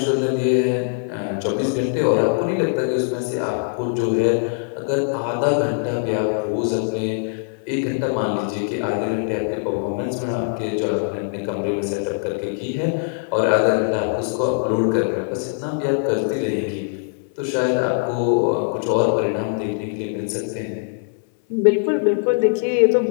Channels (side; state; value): right; silent; 61 dB below the other